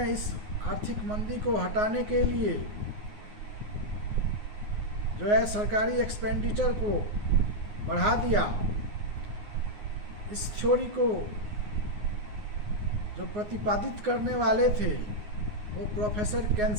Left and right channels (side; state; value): left; late; 9.6 ms